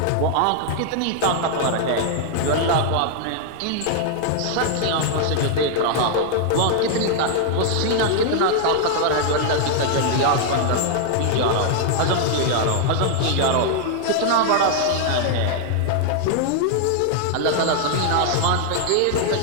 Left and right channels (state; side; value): different; both; correlation 0.00